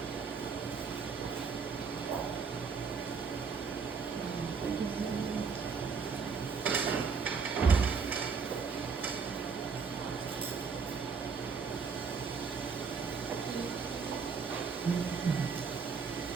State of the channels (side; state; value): left; quieter; 5.4 dB